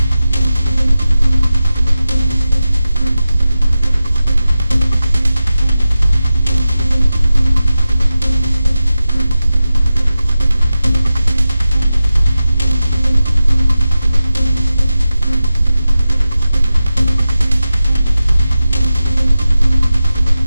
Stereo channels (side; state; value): both; inverted; correlation -0.94